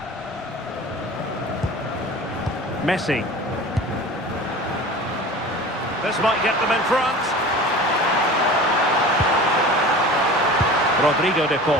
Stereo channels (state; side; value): normal; both; correlation 0.38